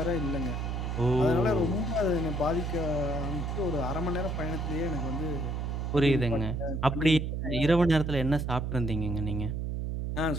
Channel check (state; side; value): noise; right; hum, 2 dB below the sound